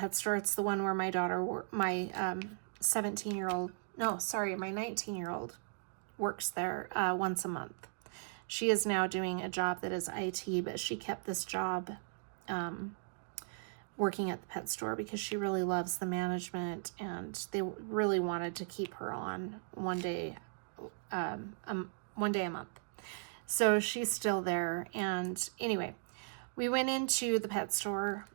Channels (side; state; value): left; silent; digital silence